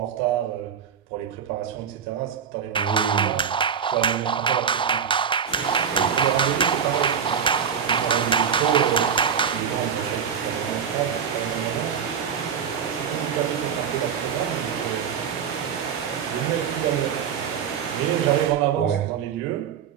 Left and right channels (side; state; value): left; quieter; 7.6 dB